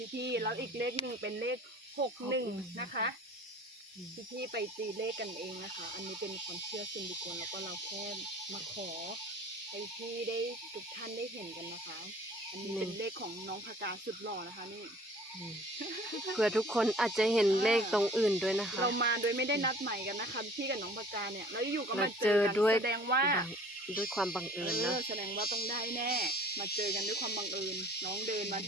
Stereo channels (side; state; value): both; normal; correlation 0.49